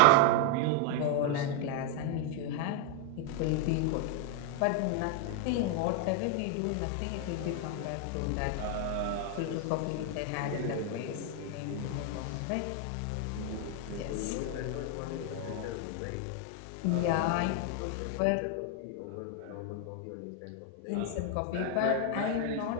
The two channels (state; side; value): different; both; correlation 0.00